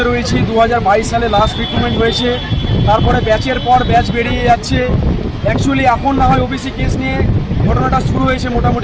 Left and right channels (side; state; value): both; identical; correlation 1.00